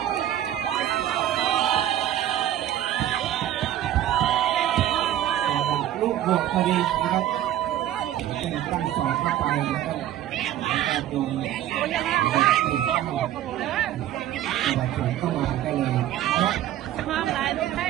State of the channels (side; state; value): left; quieter; 12.2 dB